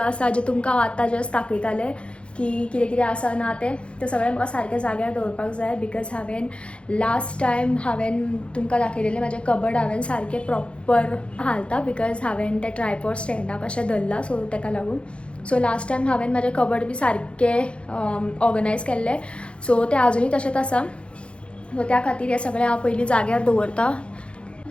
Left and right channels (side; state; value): right; late; 0.058 ms